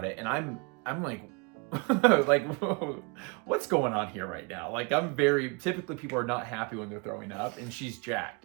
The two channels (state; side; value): quieter; left; 30.8 dB